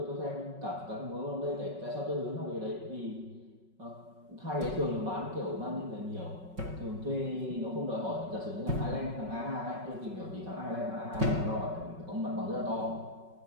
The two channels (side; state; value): left; late; 5.3 ms